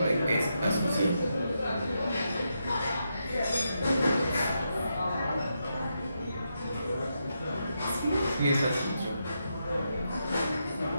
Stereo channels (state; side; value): inverted; both; correlation -0.84